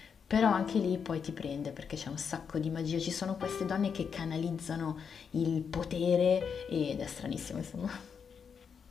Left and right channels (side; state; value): right; quieter; 6.6 dB